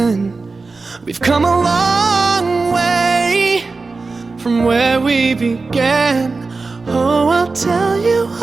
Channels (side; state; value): left; quieter; 3.9 dB